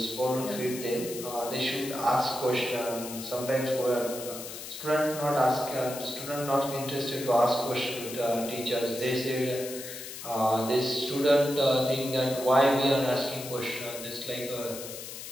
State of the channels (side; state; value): left; noise; hiss, 10 dB below the sound